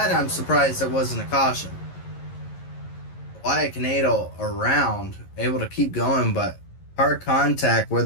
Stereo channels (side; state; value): right; late; 11 ms